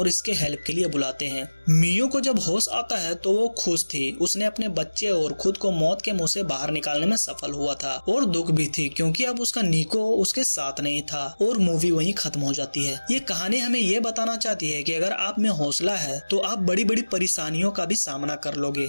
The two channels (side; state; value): both; inverted; correlation -1.00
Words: इसके हेल्प के लिए बुलाते हैं। मियो को जब होश आता है तो वो खुश थी। उसने अपने बच्चे और खुद को मौत के मुंह से बाहर निकालने में सफल हुआ था, और दुख भी थी क्योंकि अब उसका निको उसके साथ नहीं था। और मूवी वहीं खत्म हो जाती है। ये कहानी हमें ये बताना चाहती है कि अगर आप में हौसला है तो आप बड़ी बड़ी परेशानियों का भी सामना कर लोगे।